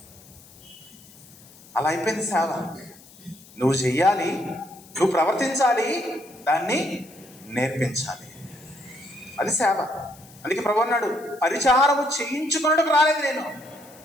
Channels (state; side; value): noise; left; hiss, 23 dB below the sound